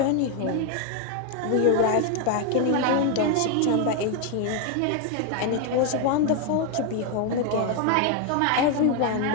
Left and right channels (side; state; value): both; different; correlation 0.01